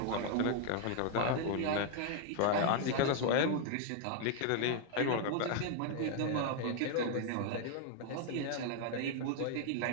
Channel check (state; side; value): different; both; correlation 0.00